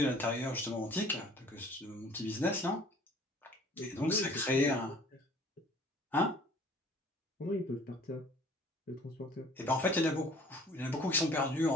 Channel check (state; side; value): normal; both; correlation 0.52